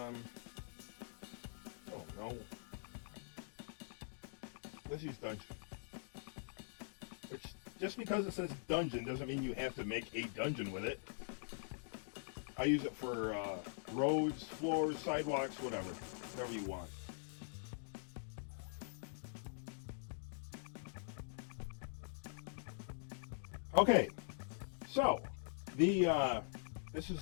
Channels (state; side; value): silent; right; digital silence